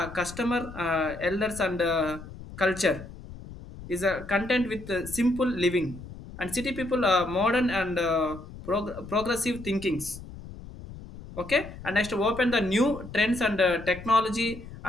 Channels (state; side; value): noise; left; rumble, 14 dB below the sound